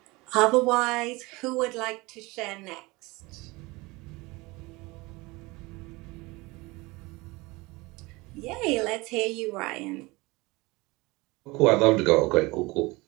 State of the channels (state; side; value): quieter; left; 23.2 dB